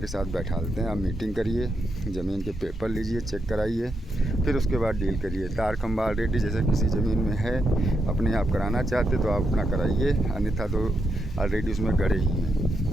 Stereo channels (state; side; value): normal; both; correlation 0.82